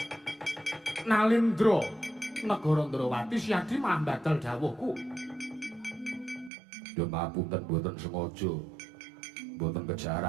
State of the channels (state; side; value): drops out; left; at 6.5 s